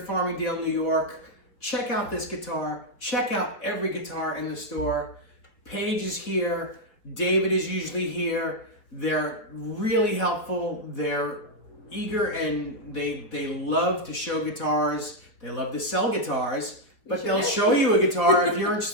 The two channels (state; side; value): late; right; 4.4 ms